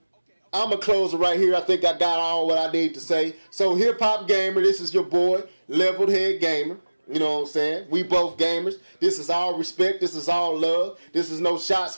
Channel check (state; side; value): inverted; both; correlation -1.00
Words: I'm going to close it right here. I think I got all what I need to say. So HipHopGamer, this is your boy, Leveled Head Gamer. You know what I'm saying? We both gamers. This is all respect. This is all love. This is no shots